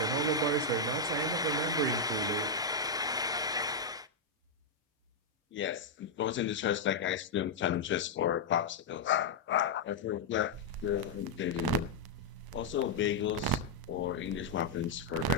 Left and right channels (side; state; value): right; quieter; 3.2 dB